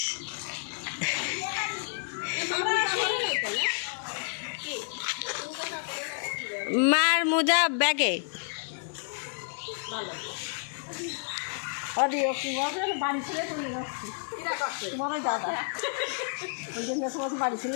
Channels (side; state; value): right; silent; digital silence